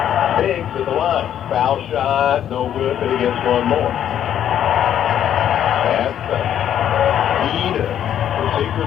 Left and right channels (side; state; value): right; quieter; 10.2 dB